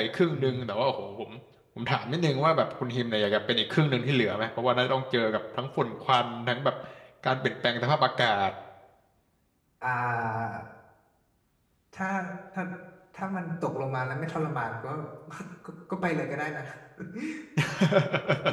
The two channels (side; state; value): both; identical; correlation 1.00